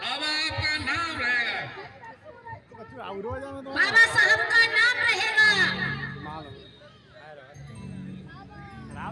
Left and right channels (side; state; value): both; identical; correlation 1.00